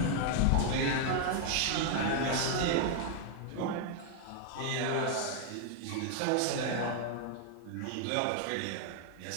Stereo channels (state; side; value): different; both; correlation 0.00